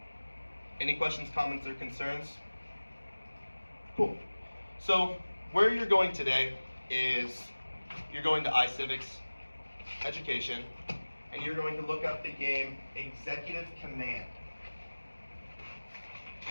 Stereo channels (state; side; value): inverted; both; correlation -1.00